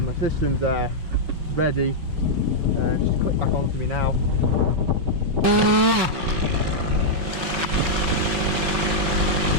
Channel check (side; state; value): left; late; 5.8 ms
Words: system's there, ready. Just click back onto me now.